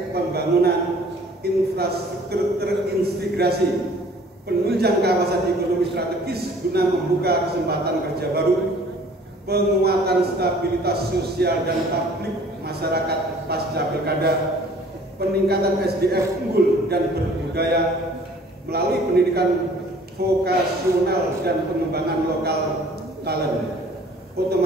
pembangunan infrastruktur terintegrasi, penunjang kawasan ekonomi strategis guna membuka kesempatan kerja baru, penguatan stabilitas sosial dan publik masyarakat pasca pilkada, peningkatan SDM unggul dan berbudaya melalui pendidikan vokasional dan pengembangan lokal talent,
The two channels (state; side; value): normal; both; correlation 0.53